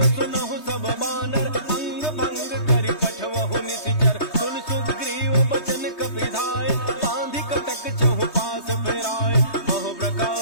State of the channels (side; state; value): right; late; 3.2 ms